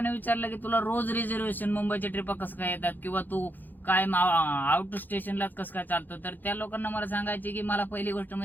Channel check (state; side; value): late; right; 0.087 ms